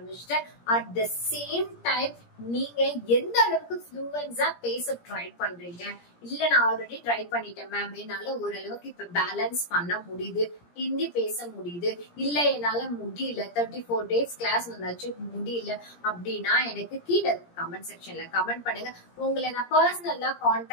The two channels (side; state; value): right; late; 17 ms